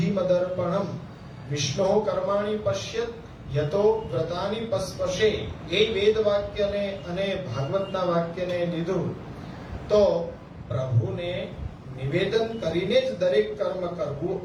મદર્પણમ વિષ્ણુ કર્માણિ પશ્યત યતો વ્રતાની પસ્પશે એ વેદ વાક્યને અને ભાગવતના વાક્યને લીધું, તો પ્રભુને નિવેદન કરીને જ દરેક કર્મ કરવું,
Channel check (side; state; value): both; identical; correlation 1.00